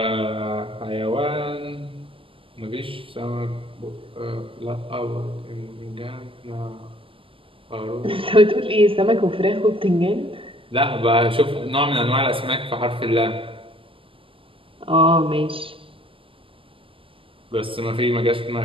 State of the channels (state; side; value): late; left; 0.25 ms